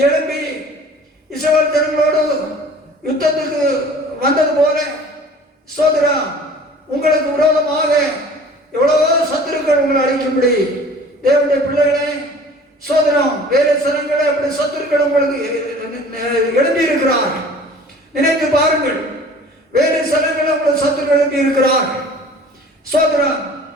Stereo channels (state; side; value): normal; both; correlation 0.47